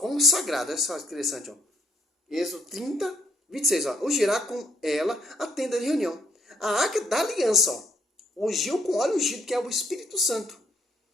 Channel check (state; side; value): normal; both; correlation 0.68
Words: olha só que interessante. Ó. Êxodo 30, 26. Ó. Ungirá com ela a tenda de reunião. A Arca da Aliança, ó. Ungiu com óleo ungido, que é o Espírito Santo.